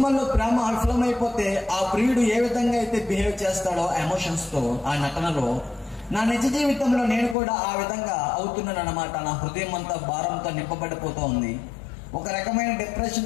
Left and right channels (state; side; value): drops out; right; at 7.4 s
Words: ప్రేమ విఫలమైపోతే ఆ ప్రియుడు ఏ విధంగా అయితే బిహేవ్ చేస్తాడో ఎమోషన్స్ తో ఆ నటనలో, నా నిజ జీవితంలో నేను కూడా ఆ విధంగా అవుతున్నాను అన్నమాట. నా హృదయం అంతా భారంతో నింపబడిపోతూ ఉంది. ఒక రకమైన